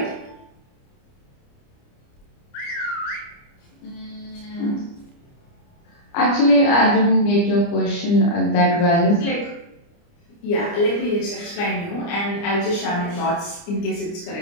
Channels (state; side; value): late; right; 29 ms